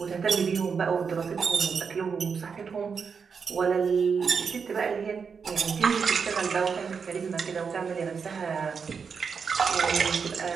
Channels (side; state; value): left; quieter; 5.9 dB